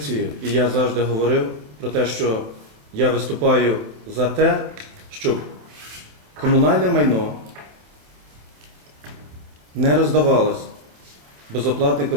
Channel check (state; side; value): late; left; 27 ms